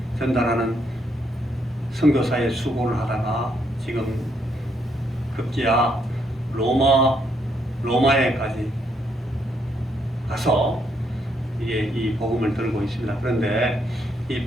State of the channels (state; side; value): normal; both; correlation 0.74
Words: 전달하는 선교사의 수고를 하다가 지금 급기야 로마에까지 가서 이게 이 복음을 들고 있습니다. 그런데 이